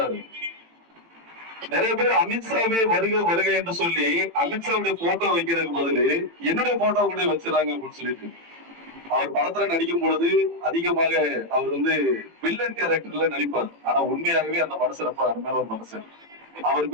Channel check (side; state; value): left; late; 18 ms